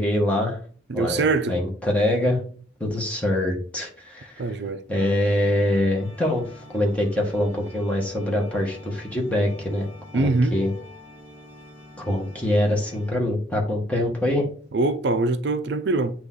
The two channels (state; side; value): normal; both; correlation 0.66